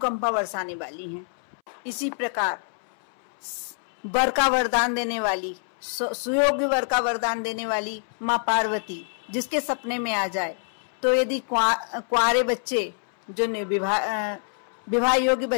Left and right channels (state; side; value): silent; right; 61 dB below the other